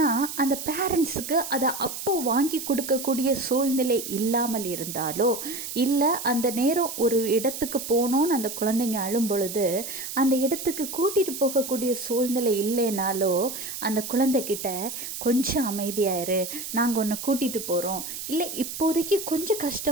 அந்த பேரண்ட்ஸுக்கு அதை அப்போ வாங்கி கொடுக்கக்கூடிய சூழ்நிலை இல்லாமல் இருந்தாலோ, இல்லை அந்த நேரம் ஒரு இடத்துக்கு போகணுன்னு அந்த குழந்தைங்க அழும் பொழுது அந்த இடத்துக்கு கூட்டிகிட்டு போகக்கூடிய சூழ்நிலை இல்லைனாலோ, அந்த குழந்தைகிட்ட கொஞ்சம் அமைதியாயிரு, நாங்கள் உன்னை கூட்டிகிட்டு போகிறோம், இல்லை இப்போதைக்கு கொஞ்சம்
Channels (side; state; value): right; noise; hiss, 7 dB below the sound